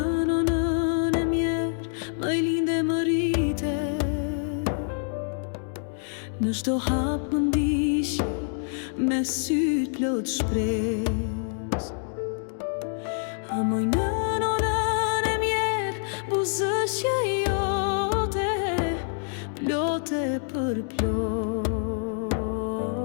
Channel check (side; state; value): right; silent; digital silence